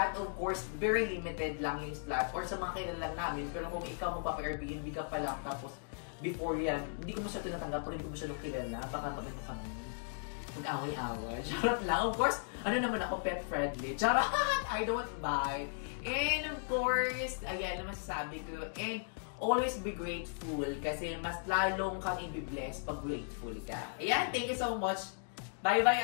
of course, very limited lang yung slot. Or sa mga kilala lang namin, pero kung ikaw magpapa-Airbnb ka pa lang, tapos before yan, hindi ko mo siya tinatanggap, pero hindi ko mo siya kilala, baka maganda kami. Mag-away-away. Charot lang. Of course, ano naman ako, pet-friendly. Charot! I don't buy. And of course, ayan naman masasabi ko. And always be grateful kasi mas lalong kang i-bless pag grateful ka. Ayan, thank you so much.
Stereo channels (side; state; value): right; silent; digital silence